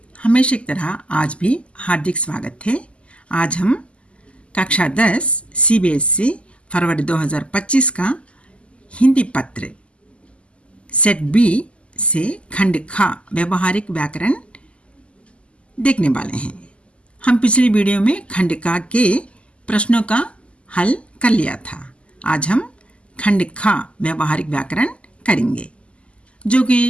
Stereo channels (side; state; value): right; late; 0.056 ms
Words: हमेशा की तरह आज भी हार्दिक स्वागत है। आज हम कक्षा 10 CBSE फरवरी 2025 का हिंदी पत्र सेट बी से खंड खा व्यवहारिक व्याकरण देखने वाले हैं। हम पिछली वीडियो में खंड का के प्रश्नों का हल कर लिया था। आज हम खंड खा व्यवहारिक व्याकरण करेंगे। जो